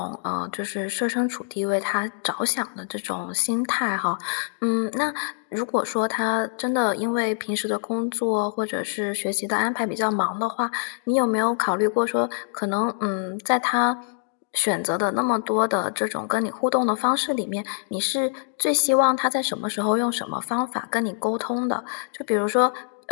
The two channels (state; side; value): silent; right; digital silence